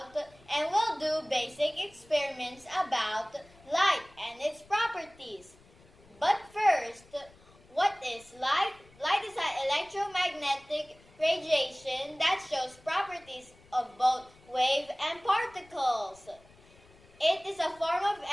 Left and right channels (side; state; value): left; noise; rumble, 27 dB below the sound